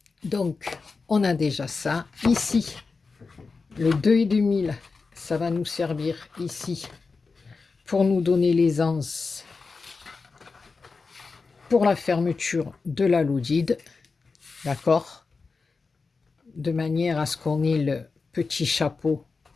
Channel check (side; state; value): right; quieter; 4.4 dB